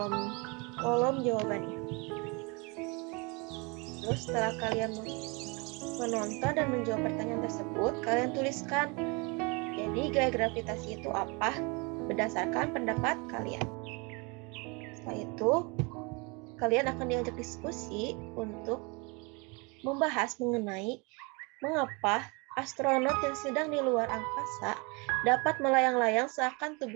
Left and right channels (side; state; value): left; quieter; 29.7 dB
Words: jawabannya. Terus setelah kalian menonton dan menjawab pertanyaan tersebut, kalian tuliskan, jadi gaya gravitasi itu apa berdasarkan pendapat kalian. Setelah itu, kalian akan diajak diskusi untuk membahas mengenai mengapa astronot yang sedang di luar angkasa dapat melayang-layang seakan